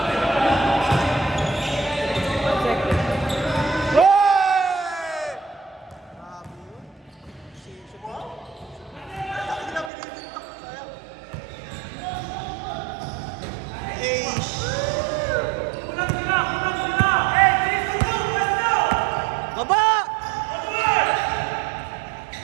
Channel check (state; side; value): drops out; left; at 9.9 s